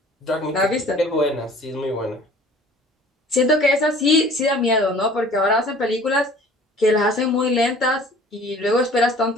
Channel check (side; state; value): both; normal; correlation 0.49